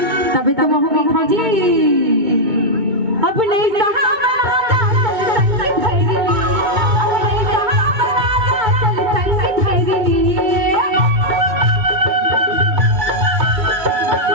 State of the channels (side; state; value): left; late; 2.2 ms